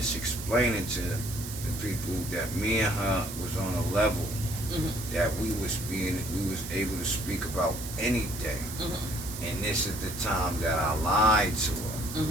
explaining to the people that me and her was on a level that we was able to speak about anything. And this is the time that I lied to her.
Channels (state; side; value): noise; right; hiss, 10 dB below the sound